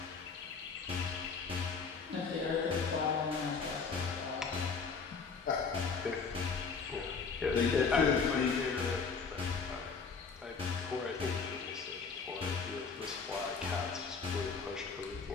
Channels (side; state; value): right; quieter; 5.2 dB